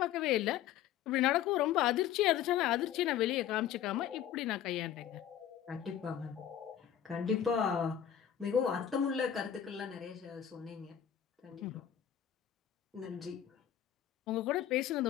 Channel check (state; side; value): quieter; right; 10.2 dB